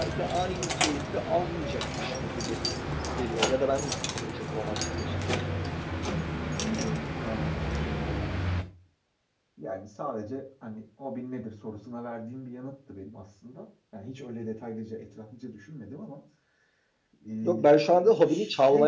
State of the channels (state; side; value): identical; both; correlation 1.00